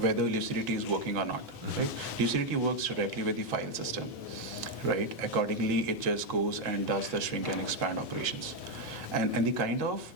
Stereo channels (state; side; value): late; right; 1.4 ms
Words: Lucidity is working or not, right? Lucidity works directly with the file system, right? Accordingly, it just goes and does the shrink and expand operations. And the kind of